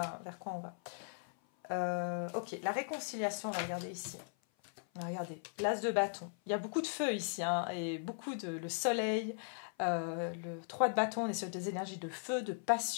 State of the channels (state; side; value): silent; right; 52 dB below the other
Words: vers quoi on va. Ok, la réconciliation, on va regarder ici. Regardez, l'as de bâton. Il y a beaucoup de feu ici, hein, et beaucoup le soleil. Le 3 de bâton, on est sur des énergies de feu, de